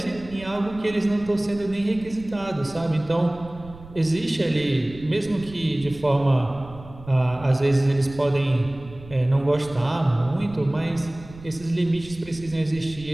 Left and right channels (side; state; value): right; noise; rumble, 18 dB below the sound